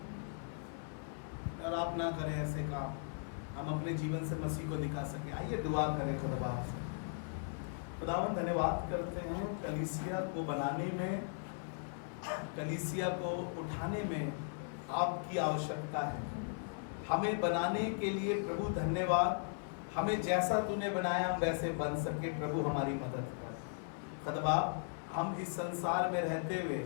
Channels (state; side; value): silent; right; 53 dB below the other